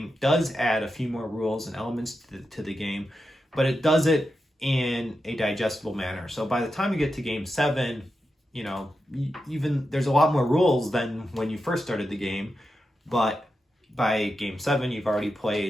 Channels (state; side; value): normal; both; correlation 0.89